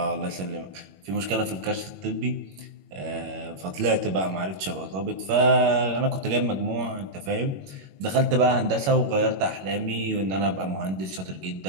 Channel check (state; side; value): late; left; 21 ms